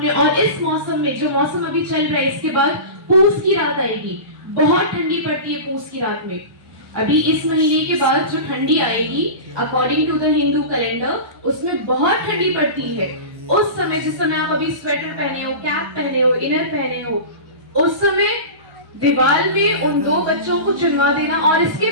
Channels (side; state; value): left; late; 1.1 ms